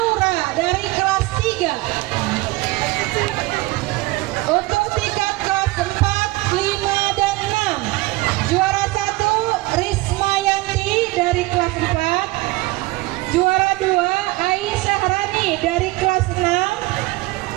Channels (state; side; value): quieter; left; 21.0 dB